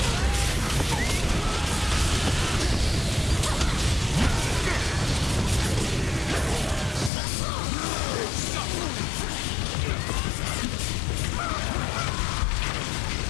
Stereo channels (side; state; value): right; drops out; at 7.1 s